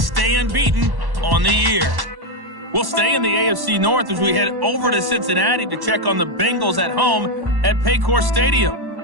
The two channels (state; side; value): late; left; 1.1 ms